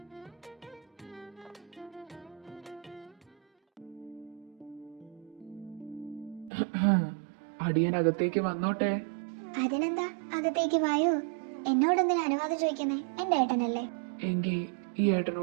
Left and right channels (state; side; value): drops out; left; at 6.5 s